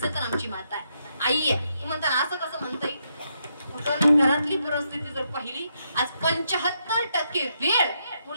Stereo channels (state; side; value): inverted; both; correlation -0.79